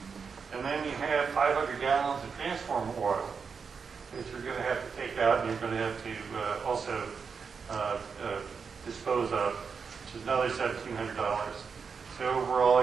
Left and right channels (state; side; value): quieter; left; 5.7 dB